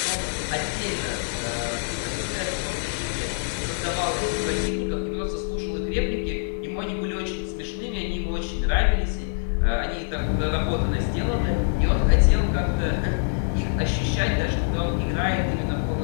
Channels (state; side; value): silent; right; digital silence